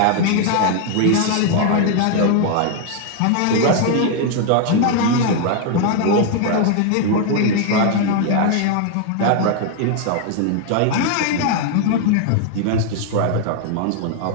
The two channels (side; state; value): both; different; correlation 0.00